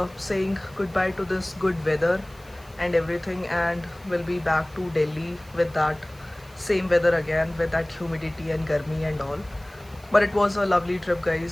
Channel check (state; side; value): noise; right; hiss, 26 dB below the sound